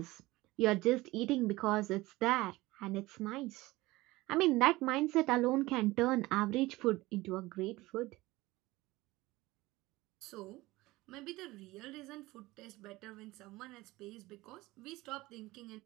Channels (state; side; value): quieter; left; 19.7 dB